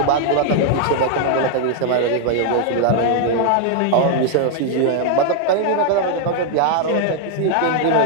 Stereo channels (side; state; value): both; different; correlation 0.00